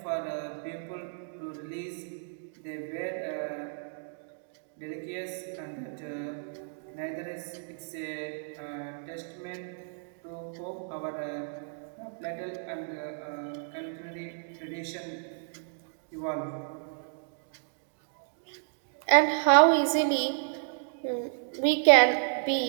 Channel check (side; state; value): left; silent; digital silence